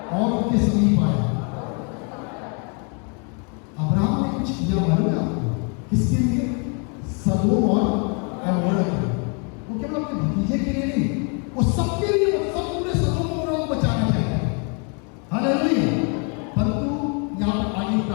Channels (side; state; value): right; quieter; 36.2 dB